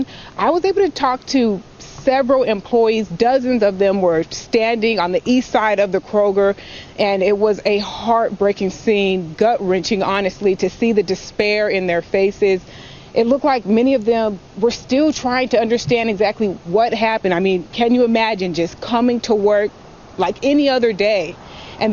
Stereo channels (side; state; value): both; identical; correlation 1.00